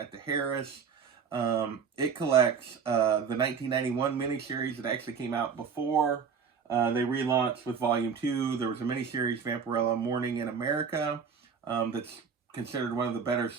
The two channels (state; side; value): quieter; left; 6.3 dB